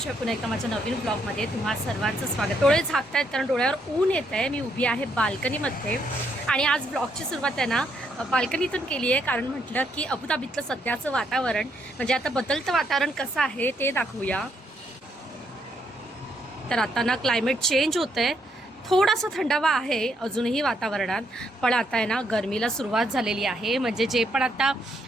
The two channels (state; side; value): normal; both; correlation 0.74